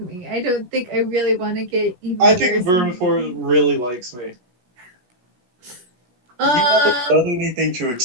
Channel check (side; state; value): left; late; 16 ms